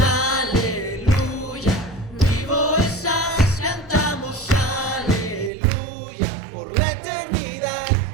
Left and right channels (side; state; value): left; drops out; at 5.5 s